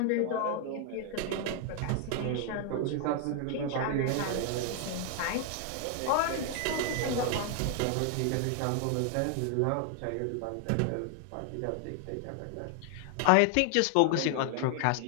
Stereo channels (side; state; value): both; different; correlation 0.00